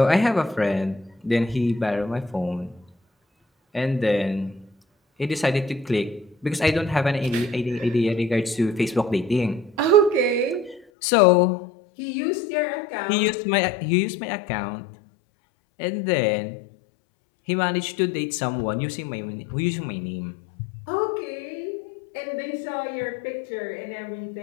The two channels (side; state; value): right; drops out; at 10.8 s